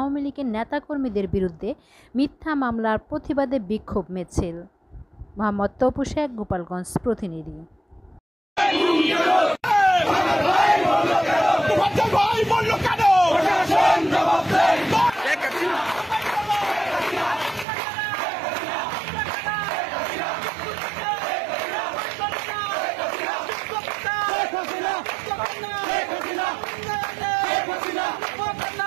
লীগের নেতাকর্মীদের বিরুদ্ধে মিথ্যা মামলার প্রতিবাদে বিক্ষোভ মিছিল। মোহাম্মদ তপু শেখ, গোপালগঞ্জ প্রতিনিধি।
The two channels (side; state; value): left; drops out; at 17.7 s